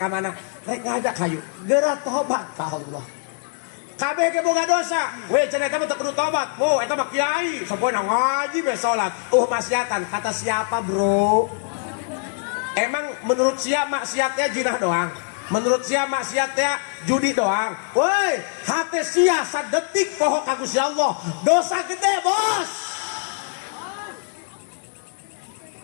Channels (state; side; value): silent; right; 63 dB below the other